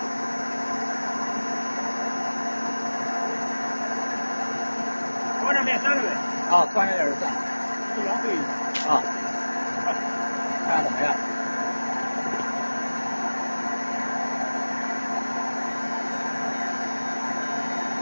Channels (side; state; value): both; inverted; correlation -1.00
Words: 往上面3了呗。啊，突然有点算。不浪费。啊。看看怎么样？